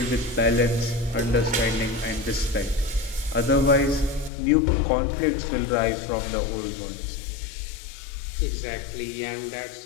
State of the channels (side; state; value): right; drops out; at 4.3 s